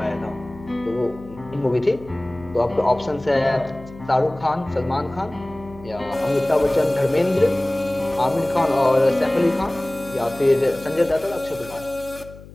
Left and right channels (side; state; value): left; noise; hum, 18 dB below the sound